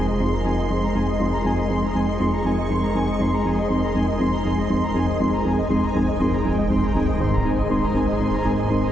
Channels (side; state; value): both; normal; correlation 0.83